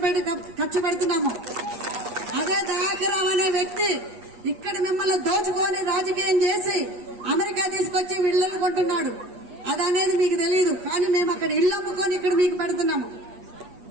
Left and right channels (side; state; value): left; late; 8.4 ms